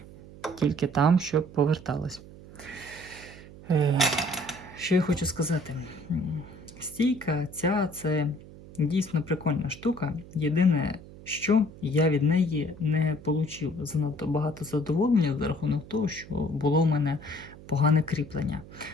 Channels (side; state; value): right; noise; hum, 18 dB below the sound